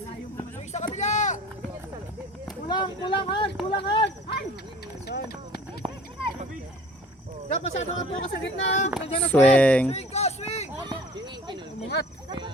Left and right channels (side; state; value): both; normal; correlation 0.48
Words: Kulang hard, kulang hard. Jab, masyado ka po ka sa gitna. Nandiyan na Swing.